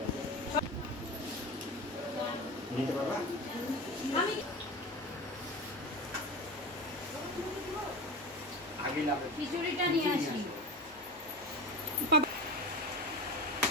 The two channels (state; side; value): normal; both; correlation 0.28